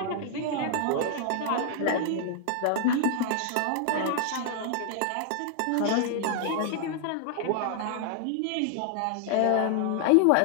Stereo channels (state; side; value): different; both; correlation 0.00